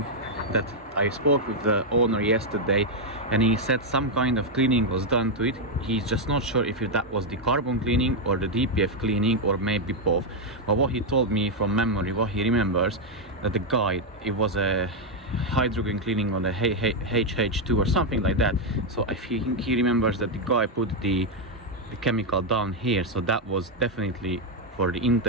that I spoke with the owner yesterday and he said some kind of cleaning was done to it. He's just not sure if that was the carbon cleaning or the DPF cleaning or maybe both. But what he told me from memory, what he remembers, that the guy, it was a hydrogen cleaning on the HH2 or something like that. So I think he remembers that the guy put the chemical down here, so that was definitely for the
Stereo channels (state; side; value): normal; both; correlation 0.01